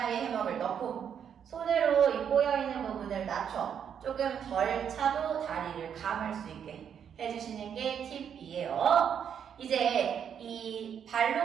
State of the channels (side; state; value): left; quieter; 8.2 dB